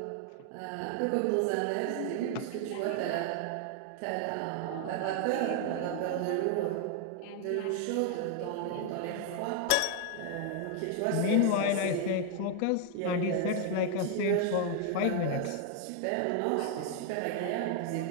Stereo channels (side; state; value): both; different; correlation 0.00